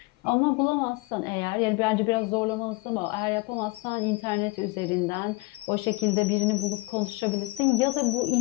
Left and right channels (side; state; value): right; quieter; 23.9 dB